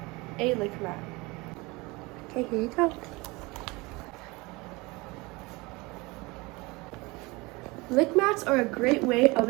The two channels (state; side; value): quieter; left; 24.2 dB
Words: a lick mat. Okay, here you go. Lick mats are a great way of